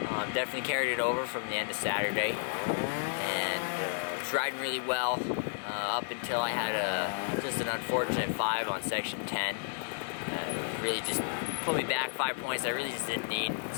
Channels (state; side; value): silent; right; digital silence